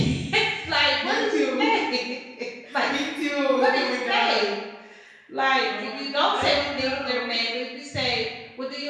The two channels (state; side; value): identical; both; correlation 1.00